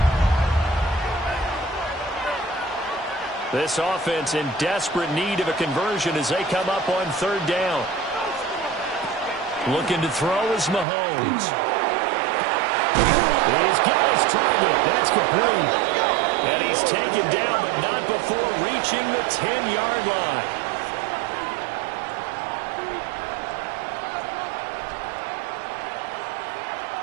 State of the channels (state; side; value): drops out; left; at 10.9 s